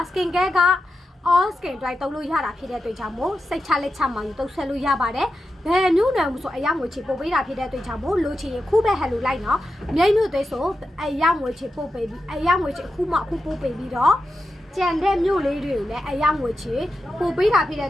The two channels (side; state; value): both; normal; correlation 0.90